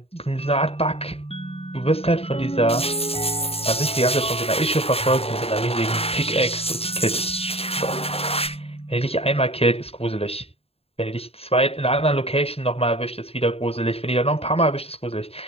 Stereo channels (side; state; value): right; late; 0.29 ms